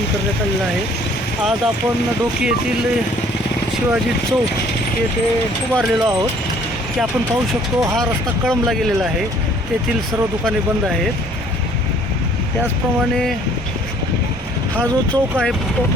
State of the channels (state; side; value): normal; both; correlation 0.57